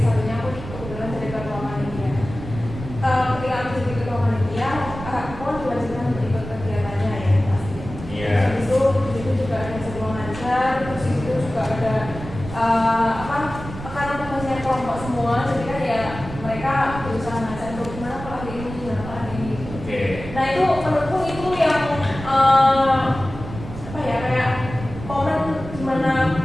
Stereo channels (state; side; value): noise; right; rumble, 11 dB below the sound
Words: satunya aku kebetulan jadi ketua panitia.